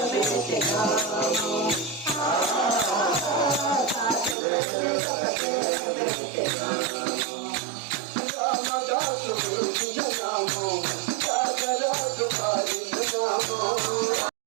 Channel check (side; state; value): left; drops out; at 4.4 s